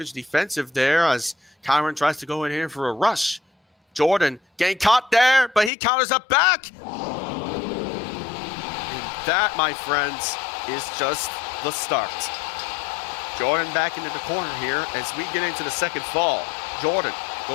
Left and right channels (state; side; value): drops out; right; at 5.7 s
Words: defensive there as Kyron tries to go in here for a rush. Jordan getting caught there, but he counters up back. And that, my friends, is just the start. Jordan back into the corner here as we get into the second fall. Jordan